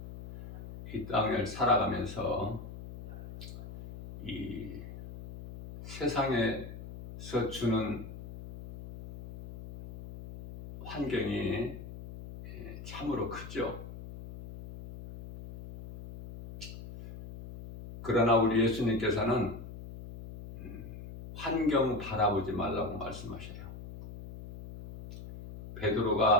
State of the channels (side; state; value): left; noise; hum, 12 dB below the sound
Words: 이 땅을 살아가면서 이 세상에서 주는 환경이 참으로 크죠. 그러나 우리 예수님께서는 환경 바라보지 말라고 말씀하셔요.